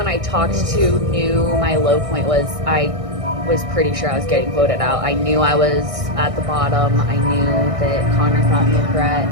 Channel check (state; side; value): late; left; 1.6 ms